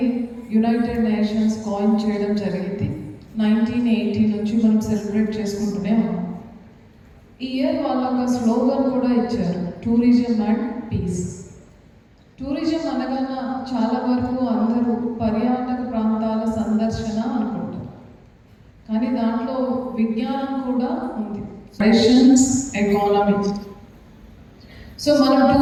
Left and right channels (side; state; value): both; identical; correlation 1.00